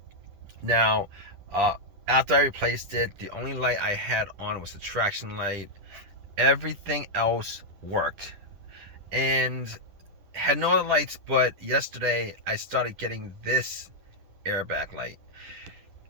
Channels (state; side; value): late; left; 10 ms